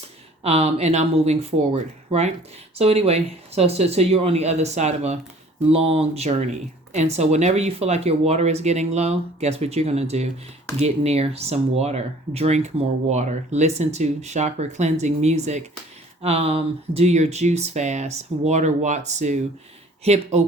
and I'm moving forward, right? So anyway, so you're on the other side of a long journey. And so whenever you feel like your water is getting low, guess what you're going to do? Get near some water. Drink more water. Listen to chakra cleansing music. Do your juice fast. Water Watsu. Hip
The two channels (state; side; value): normal; both; correlation 0.52